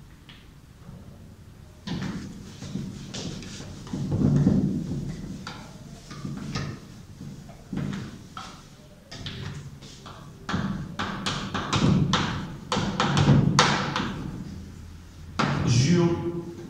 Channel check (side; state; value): both; identical; correlation 1.00